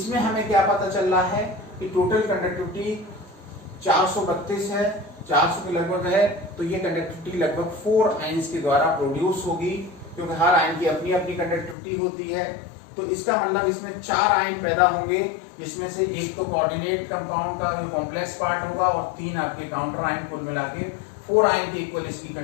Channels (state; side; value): drops out; right; at 11.8 s